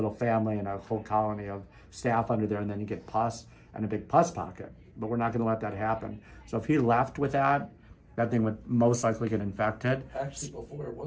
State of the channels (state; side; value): identical; both; correlation 1.00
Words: family and a whole colony of staph under there, and then you get pus and a big pus pocket. But we're not going to let that happen. So if he left with that, that thing would most likely get infected. Actually,